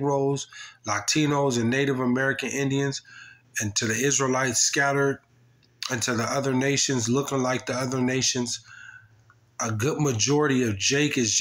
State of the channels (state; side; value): identical; both; correlation 1.00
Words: Latinos, and Native American Indians, and to the Israelites scattered, and to the other nations looking like the other nations, a good majority of Jake is